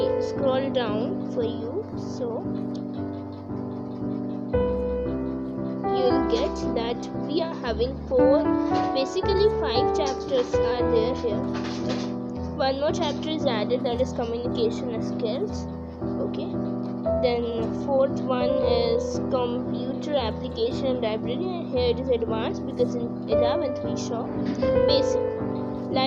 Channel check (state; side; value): identical; both; correlation 1.00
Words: scroll down for you, so you'll get that we are having 5 chapters are there here. One more chapter is added, that is communication skills. Okay, then 4th one is computer application library, and here it is advanced because in 11th we saw basic